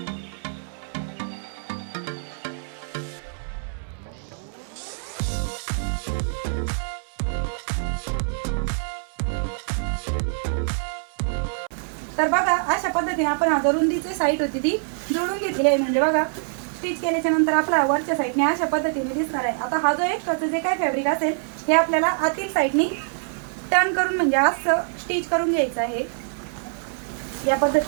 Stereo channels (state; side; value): silent; left; 61 dB below the other